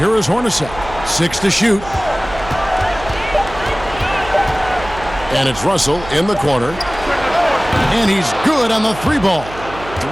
is Hornacek. 6 to shoot. And it's Russell in the corner. And he's good on the 3-ball.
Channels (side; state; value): right; noise; hum, 14 dB below the sound